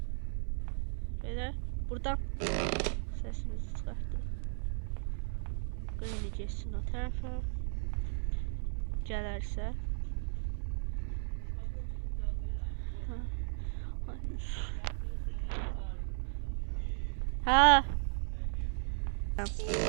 Belə buradan səsimizi çıxartdıq. Granny geçsin o tərəfə. Gələrsə. Ha.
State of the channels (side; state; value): left; silent; 54 dB below the other